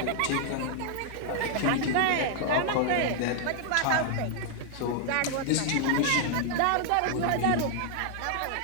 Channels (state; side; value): different; both; correlation 0.00